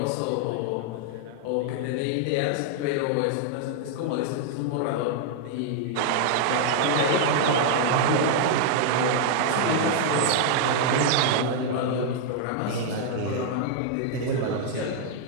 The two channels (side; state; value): both; different; correlation 0.00